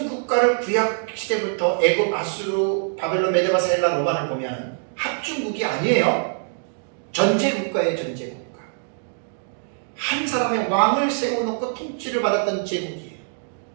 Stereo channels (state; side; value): silent; left; digital silence